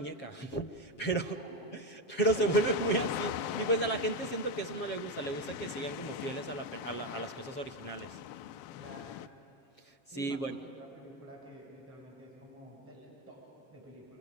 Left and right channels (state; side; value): late; right; 7.3 ms